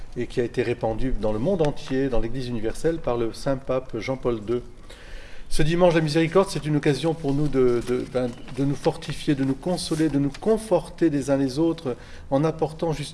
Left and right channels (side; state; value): both; identical; correlation 1.00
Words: et qui a été répandue dans le monde entier, dans l'Église universelle, par le Saint-Pape Jean-Paul II. Ce dimanche de la miséricorde, c'est une occasion pour nous de nous fortifier, de nous consoler, de nous conforter les uns les autres en apportant